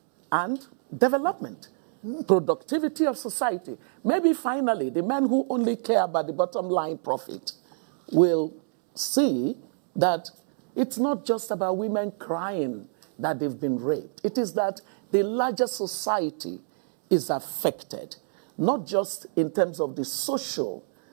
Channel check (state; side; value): silent; left; digital silence